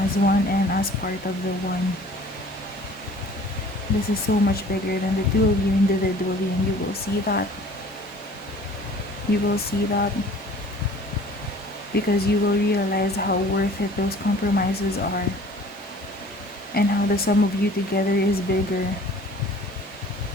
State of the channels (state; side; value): normal; both; correlation 0.49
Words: one and as part of the one. This is so much bigger than the two of you individually, and you will see that. You will see that because you will realize how worth it those compromises are, and how the sum of you together is bigger